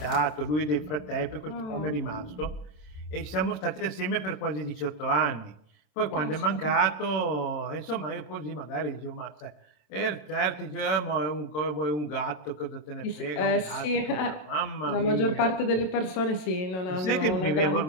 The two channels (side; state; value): right; late; 27 ms